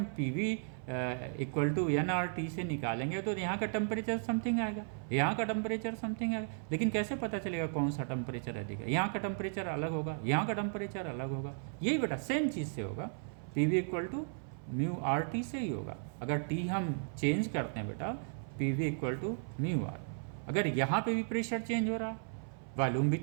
PV इक्वल टू nRT से निकालेंगे तो यहाँ का टेम्परेचर समथिंग आएगा, यहाँ का टेम्परेचर समथिंग आएगा, लेकिन कैसे पता चलेगा कौन सा टेम्परेचर अधिक है? यहाँ का टेम्परेचर अलग होगा, यहाँ का टेम्परेचर अलग होगा। यही बेटा सेम चीज़ से होगा, PV equal to mu RT से ही होगा। अगर T हम चेंज करते हैं बेटा, PV equal to mu R। अगर यहाँ पे भी प्रेशर चेंज हो रहा, वॉल्यूम भी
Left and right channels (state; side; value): silent; left; 54 dB below the other